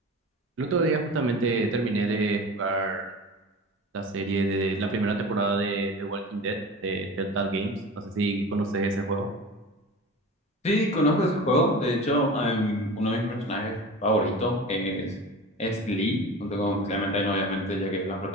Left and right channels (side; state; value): both; normal; correlation 0.34